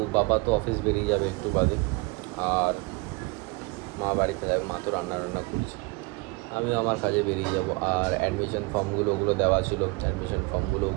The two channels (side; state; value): left; quieter; 25.9 dB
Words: বাবা তো অফিস বেরিয়ে যাবে একটু বাদে, আর মা বাড়িতে যাবে, মা তো রান্না করছে। আমিও আমার কাজে বেরিয়ে যাব। আর অ্যাডমিশন ফর্মগুলো ওগুলো দেওয়া ছিল, অ্যাডমিশন ফর্মগুলো